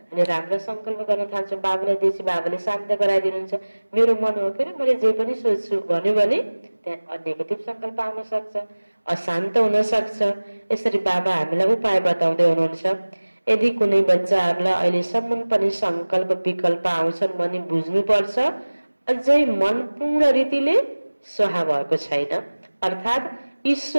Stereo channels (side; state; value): both; inverted; correlation -1.00